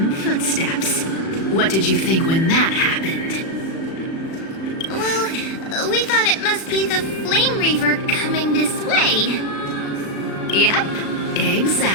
footsteps. What did you think when that happened? Well, we thought it must be the Flame Reaver coming this way. Yep,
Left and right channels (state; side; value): late; right; 36 ms